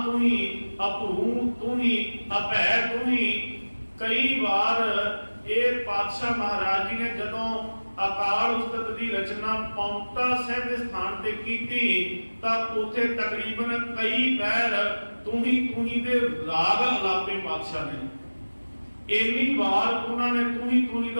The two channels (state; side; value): inverted; both; correlation -1.00